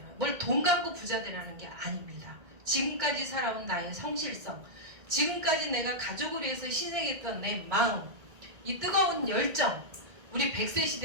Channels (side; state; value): left; late; 1.8 ms